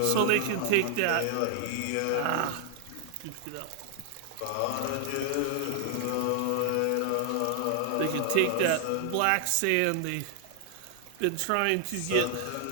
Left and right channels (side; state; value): both; different; correlation 0.00